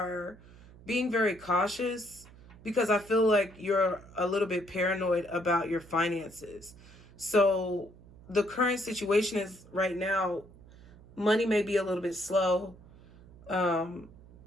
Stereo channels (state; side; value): noise; right; hum, 22 dB below the sound